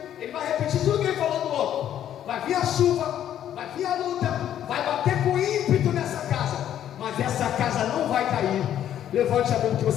ele vai repetir tudo que ele falou do outro, vai vir a chuva, vai vir a luta, vai bater com ímpeto nessa casa, mas essa casa não vai cair. Levante a mão que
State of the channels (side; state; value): right; quieter; 10.7 dB